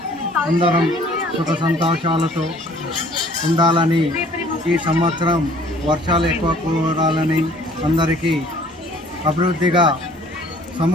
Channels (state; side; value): normal; both; correlation 0.55